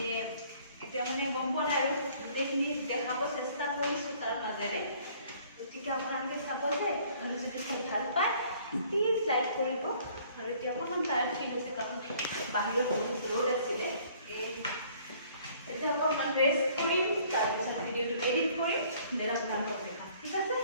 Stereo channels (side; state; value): both; inverted; correlation -0.58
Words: এতিয়া মানে গম পোৱা নাই আৰু গোটেইখিনি দেখাব চেষ্টা কৰিছোঁ তাৰ মাজেৰে গতিকে আপোনালোকে চাব যে আৰু যদি চাই ভাল পায় প্লিজ লাইক কৰিব আৰু এতিয়া অকণমান টায়াৰ্ড ফিল হৈছে কাৰণ বাহিৰত বহুত ৰ'দ আছিলে এতিয়া অকণমান ৰেষ্ট কৰিম তাৰপিছত ভিডিঅ'টো এডিট কৰিম দেন আপোনালোকক দেখাম ঠিক আছে